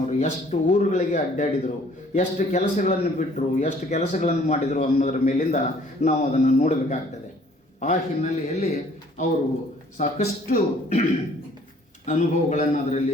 ಎಷ್ಟು ಊರುಗಳಿಗೆ ಅಡ್ಡಾಡಿದರು, ಎಷ್ಟು ಕೆಲಸಗಳನ್ನು ಬಿಟ್ಟರು, ಎಷ್ಟು ಕೆಲಸಗಳನ್ನು ಮಾಡಿದರು ಅನ್ನೋದ್ರ ಮೇಲಿಂದ ನಾವು ಅದನ್ನು ನೋಡಬೇಕಾಗ್ತದೆ. ಆ ಹಿನ್ನೆಲೆಯಲ್ಲಿ ಅವರು ಸಾಕಷ್ಟು ಅನುಭವಗಳನ್ನು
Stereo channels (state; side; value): normal; both; correlation 0.58